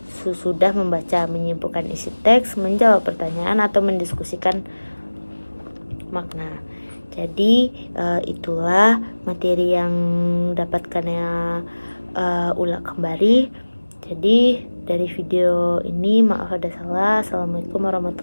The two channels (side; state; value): both; inverted; correlation -1.00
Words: Sudah membaca, menyimpulkan isi teks, menjawab pertanyaan, atau mendiskusikan makna. Jadi itulah materi yang dapatkan ulang kembali. Jadi dari video ini maaf ada salah. Assalamualaikum